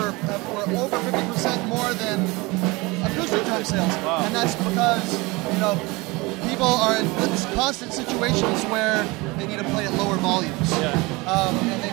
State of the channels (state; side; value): quieter; left; 24.0 dB